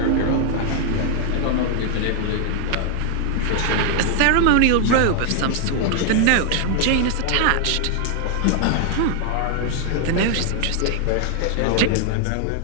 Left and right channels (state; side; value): different; both; correlation 0.00